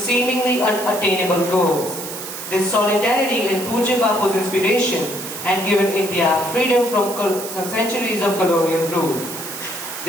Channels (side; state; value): right; noise; hiss, 9 dB below the sound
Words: unattainable goals. This solidarity in Pujya Bapu's inspiration had given India freedom from some centuries of colonial rule.